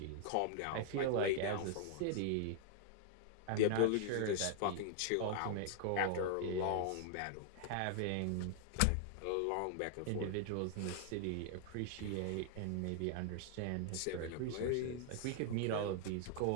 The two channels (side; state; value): both; different; correlation 0.00